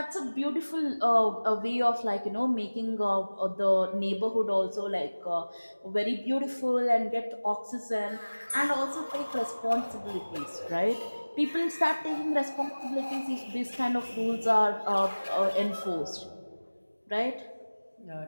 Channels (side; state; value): both; inverted; correlation -1.00